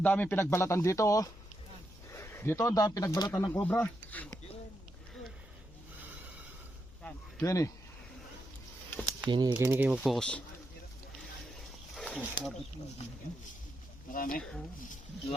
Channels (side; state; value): left; noise; hum, 21 dB below the sound